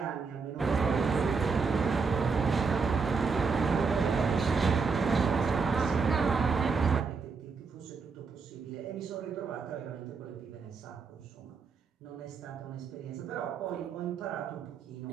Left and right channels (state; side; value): quieter; left; 4.9 dB